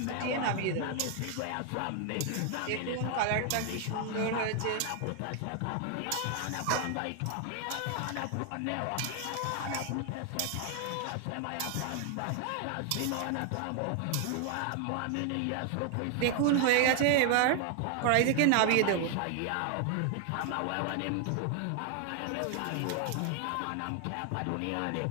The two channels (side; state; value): both; different; correlation 0.00